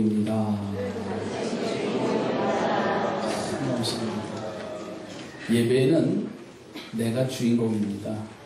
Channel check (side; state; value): both; identical; correlation 1.00